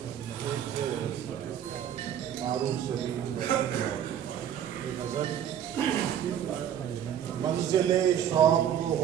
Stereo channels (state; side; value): quieter; left; 9.8 dB